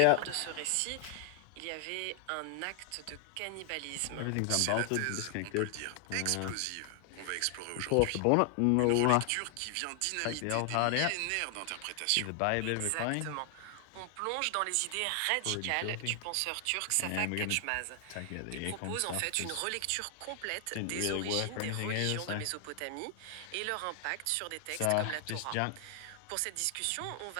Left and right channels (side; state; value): both; different; correlation 0.00